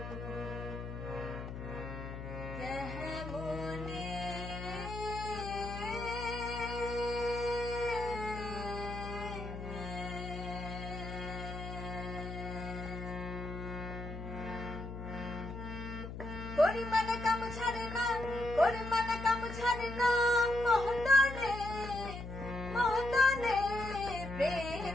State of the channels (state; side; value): noise; left; hum, 8 dB below the sound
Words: করিমানা কাম ছাড়ে না করিমানা কাম ছাড়ে না মহদানে মহদানে